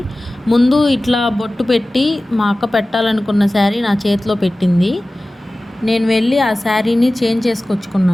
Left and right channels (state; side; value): normal; both; correlation 0.97